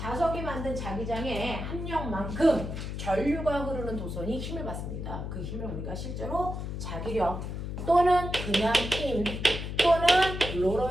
만든 자기장의 합력만큼 전류가 흐르는 도선이 힘을 받습니다. 그 힘을 우리가 실제로 자기력 또는 그냥 힘 또는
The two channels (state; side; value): noise; left; hum, 5 dB below the sound